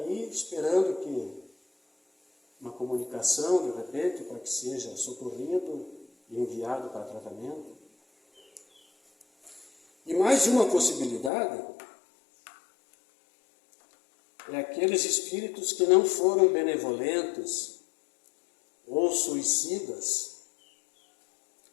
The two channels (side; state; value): right; drops out; at 11.3 s